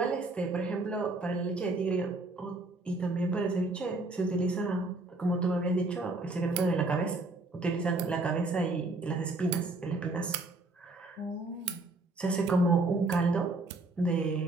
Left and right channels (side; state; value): left; quieter; 3.1 dB